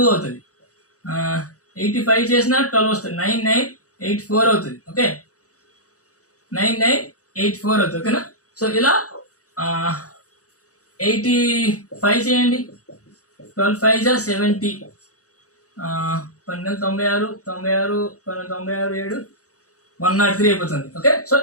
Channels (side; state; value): right; late; 0.66 ms